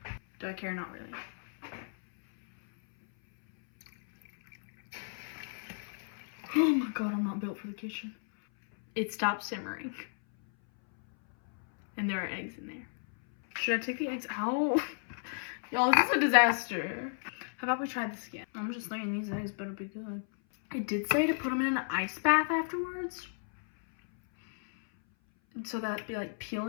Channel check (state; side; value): silent; right; 56 dB below the other